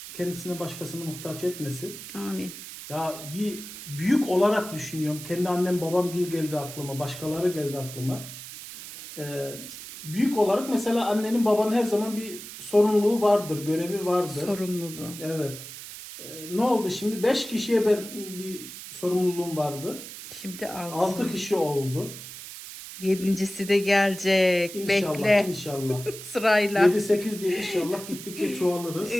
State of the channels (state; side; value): noise; right; hiss, 12 dB below the sound